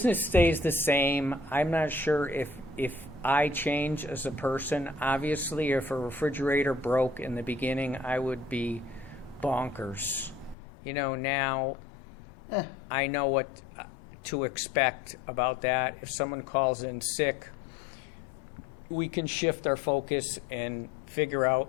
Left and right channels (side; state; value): right; drops out; at 10.6 s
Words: stays the same. I'm not sure if I change as a person. Obviously, if a refrigerator broke in the beginning, I would be bonkers. Now I know what to expect about that. If someone calls in sick, we can shift our focus and figure